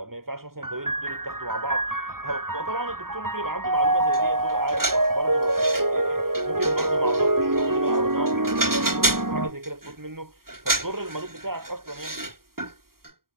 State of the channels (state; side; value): late; left; 0.93 ms